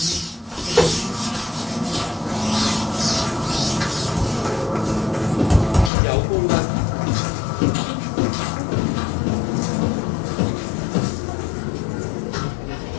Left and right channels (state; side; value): drops out; right; at 5.9 s